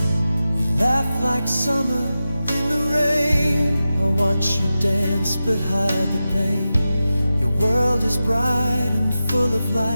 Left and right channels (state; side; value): inverted; both; correlation -0.93